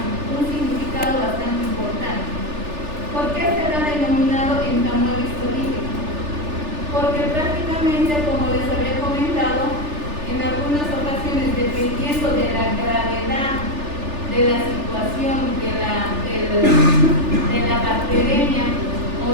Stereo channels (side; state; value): left; late; 3.4 ms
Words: significado bastante importante, ¿por qué se le ha denominado entamuela histolítica? Porque prácticamente, como les había comentado, en algunas ocasiones, dependiendo de la gravedad de la situación de la bacteremia